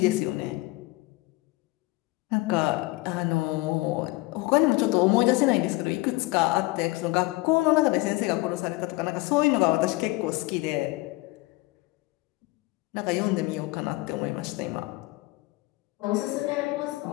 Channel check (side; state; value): right; quieter; 21.1 dB